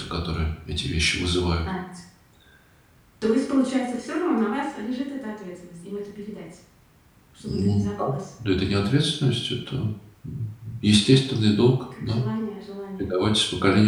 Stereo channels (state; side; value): identical; both; correlation 1.00